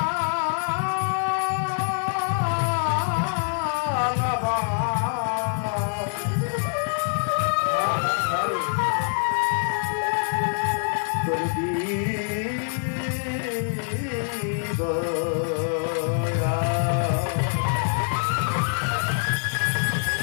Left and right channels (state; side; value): silent; right; 60 dB below the other